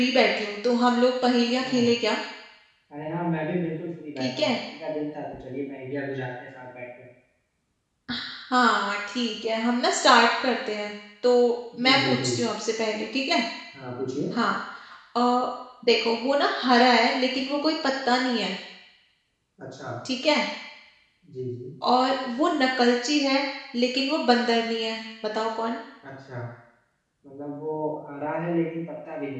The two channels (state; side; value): identical; both; correlation 1.00